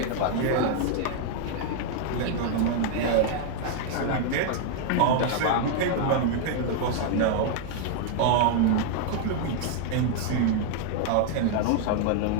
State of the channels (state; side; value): different; both; correlation 0.00